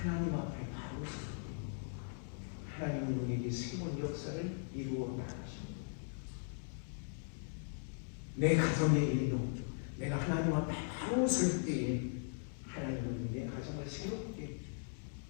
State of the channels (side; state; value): right; silent; digital silence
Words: 비로설 때에 하나님은 내 가정을 새롭게